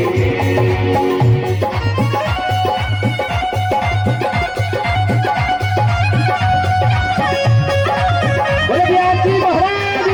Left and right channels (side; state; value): both; identical; correlation 1.00